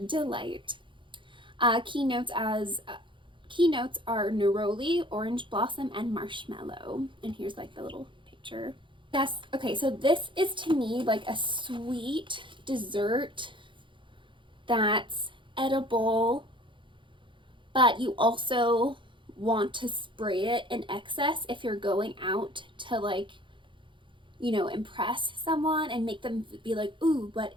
Keynotes are neroli, orange blossom, and marshmallow. And here's like the little picture. Yes, okay, so this is to me like a sweet dessert that's edible, but you also want to spray it in excess if you're going out to like, you know, impress someone and make them be like, ooh, what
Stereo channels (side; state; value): left; late; 0.24 ms